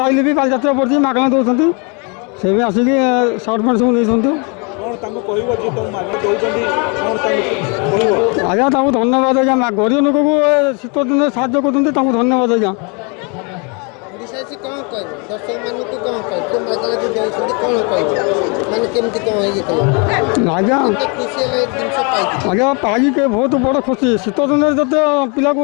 ଆଇଲେ ବି ବାଲିଯାତ୍ରା ପଡ଼ିଛି, ମାଗଣା ଦେଉଛନ୍ତି। ସେଇପାଇଁ ଆସିକି ସାର୍ଟ ପ୍ୟାଣ୍ଟ ସବୁ ନେଇଛନ୍ତି। କ'ଣ ତାଙ୍କୁ କହିବ ଯେ ତୁମ ମାଗଣା ଦେଉଛନ୍ତି, କ'ଣ ତାଙ୍କୁ କହିବ? ଆଜ୍ଞା ତାଙ୍କୁ ଧନ୍ୟବାଦ। ଆଜ୍ଞା ଗରିବ ଲୋକକୁ ଶୀତ ଦିନରେ ସାହାଯ୍ୟ କରୁଛନ୍ତି, ତାଙ୍କୁ ଧନ୍ୟବାଦ। ଆଜ୍ଞା କ'ଣ କହିବ ଦର୍ଶକମାନଙ୍କୁ, କ'ଣ କହିବ ମାଗଣା ଯେଉଁ ଦେଉଛନ୍ତି, କ'ଣ କହିବ ମାନେ କେମିତି କ'ଣ ହେଇଥିଲା? ଆଜ୍ଞା ଖୁସି ହେଲେ ଜିନିଷ ପାଇଛି। ଆଜ୍ଞା ପାଇକି ବହୁତ ବଡ଼ ଖୁସି। ଶୀତ ଦିନରେ ଯେତେ ପିଲାକୁ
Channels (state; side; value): quieter; right; 33.4 dB